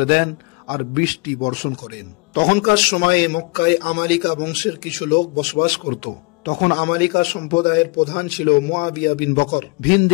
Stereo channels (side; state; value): right; quieter; 28.0 dB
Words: দেন আর বৃষ্টি বর্ষণ করেন। তখনকার সময়ে মক্কায় আমালিকা বংশের কিছু লোক বসবাস করত। তখন আমালিকা সম্প্রদায়ের প্রধান ছিল মুআবিয়া বিন বকর।